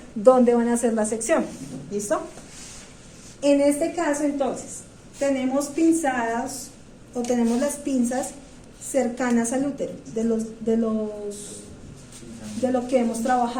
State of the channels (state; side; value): identical; both; correlation 1.00